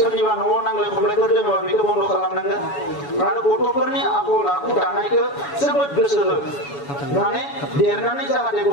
न'आव नांलाय खमलायफोर दङबा बेखौ बन्द' खालामनांगोन आरो गथ'फोरनि आखल आखु दानायखौ जोबोद गोसो हो माने देरनानै जाहाथे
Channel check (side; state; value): right; late; 7.1 ms